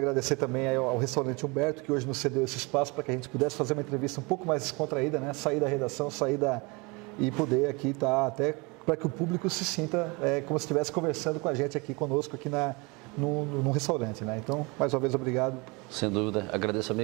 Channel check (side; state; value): left; quieter; 27.5 dB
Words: também ao restaurante Humberto, que hoje nos cedeu esse espaço para que a gente pudesse fazer uma entrevista um pouco mais descontraída, né? Sair da redação, e poder aqui estar até para que o público se sinta como se estivesse conversando com a gente aqui conosco, aqui no restaurante, né? Então, mais uma vez, obrigado. Sem dúvida. Agradeço,